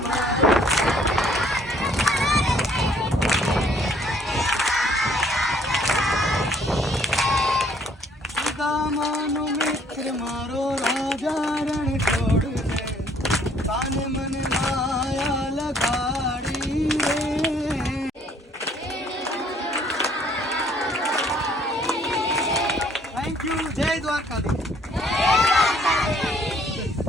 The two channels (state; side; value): normal; both; correlation 0.62